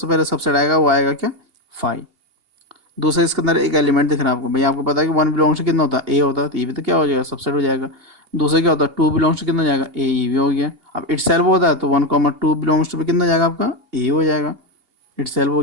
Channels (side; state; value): left; late; 2.8 ms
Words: पहले सबसेट आएगा वो आएगा क्या, 5। दूसरा इसके अंदर एक एलिमेंट दिख रहा है आपको, भाई आपको पता है कि 1 बिलोंग्स टू कितना होता है, ए होता है, तो ये भी तो क्या हो जाएगा, सबसेट हो जाएगा। दूसरा क्या होता है, 2 बिलोंग्स टू कितना जाएगा, ए, ये भी हो गया। अब इट सेल्फ होता है तो 1,2 बिलोंग्स टू भी कितना जाएगा आपका, ए हो जाएगा, इट सेल्फ हो